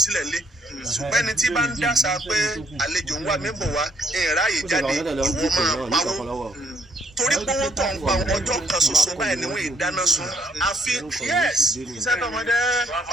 sílẹ̀ lé ṣùgbọ́n ẹni tí bá ń dàsà pé àlejò ń wá mí bọ̀ wá ìráyè jáde ìwọ máa pawó torí pé owó tó ń pa ọjọ́ kan ṣoṣo báyìí ni wọ́n ìdáná sun àfi iṣẹ́ tó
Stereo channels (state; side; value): normal; both; correlation 0.68